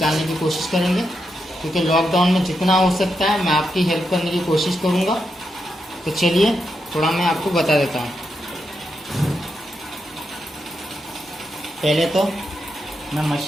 की कोशिश करेंगे, क्योंकि लॉकडाउन में जितना हो सकता है मैं आपकी हेल्प करने की कोशिश करूँगा। तो चलिए थोड़ा मैं आपको बता देता हूँ। पहले तो मैं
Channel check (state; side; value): normal; both; correlation 0.84